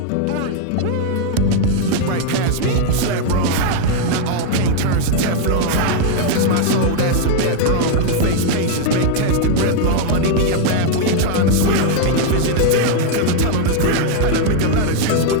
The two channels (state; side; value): different; both; correlation 0.00